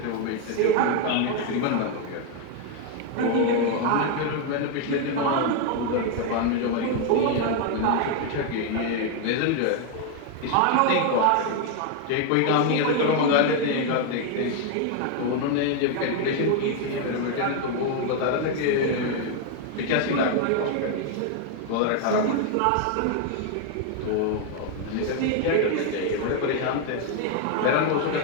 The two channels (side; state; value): both; different; correlation 0.01